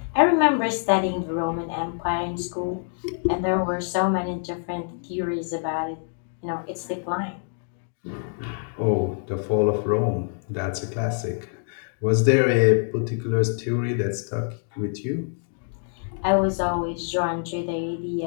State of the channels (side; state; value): right; silent; 60 dB below the other